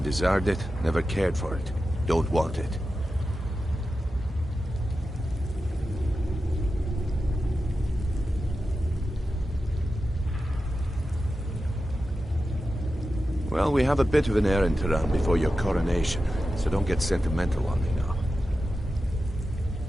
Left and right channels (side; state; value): both; normal; correlation 0.92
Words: desired it, never cared for it. Don't want it. Well, we have a bit of an errand to run before your coronation, so don't get sentimental on me now.